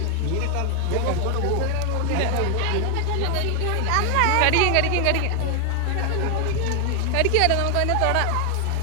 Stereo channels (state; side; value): different; both; correlation 0.00